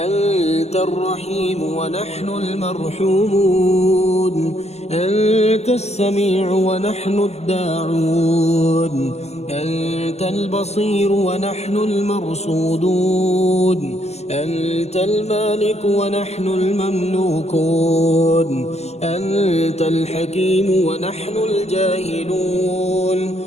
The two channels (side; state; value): right; late; 0.31 ms